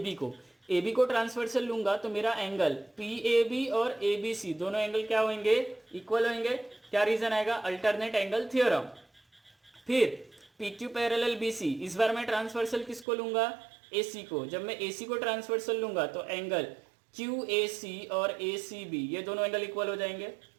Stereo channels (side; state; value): left; drops out; at 13.1 s